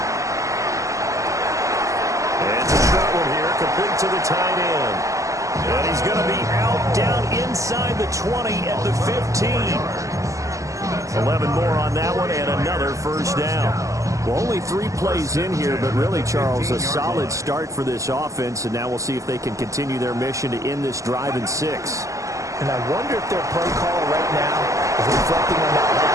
And the short one here, complete to the tight end. And he's going to be out down inside the 20 at the 15. 11 more on that one and another first down. Well, only 3 plays in here, but really, Charles, a solid start for this offense, and now we'll see if they can continue their mission to end this drive in 6. And I wonder if their play call right now is reflecting on that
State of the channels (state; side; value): late; left; 0.16 ms